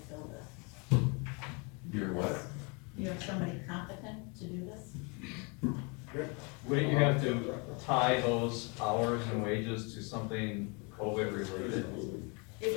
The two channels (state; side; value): quieter; right; 32.3 dB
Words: this. You're what? You have somebody competent to do this? Wouldn't you have to tie those hours and wages to something COVID related? It